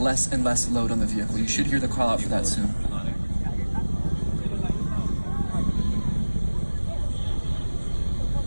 and less load on the vehicle. You should hear the call out for that soon.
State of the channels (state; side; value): inverted; both; correlation -1.00